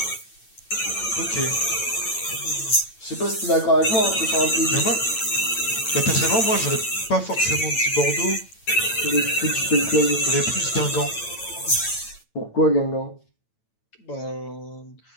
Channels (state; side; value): late; right; 8.9 ms